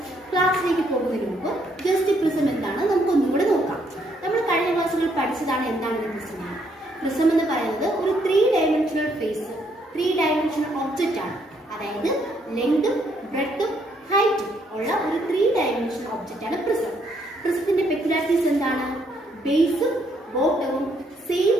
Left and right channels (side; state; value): both; normal; correlation 0.71